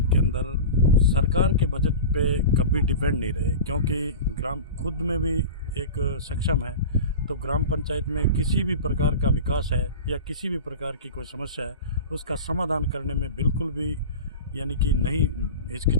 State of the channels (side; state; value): both; inverted; correlation -0.31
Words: के अंदर सरकार के बजट पे कभी डिपेंड नहीं रहे क्योंकि ग्राम खुद में भी एक सक्षम है तो ग्राम पंचायत में किसी भी प्रकार का विकास है या किसी भी प्रकार की कोई समस्या है उसका समाधान करने में बिल्कुल भी यानी कि नहीं